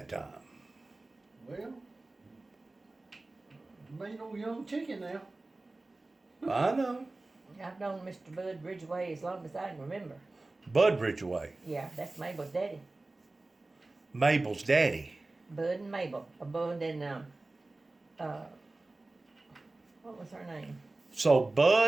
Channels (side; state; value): left; quieter; 3.1 dB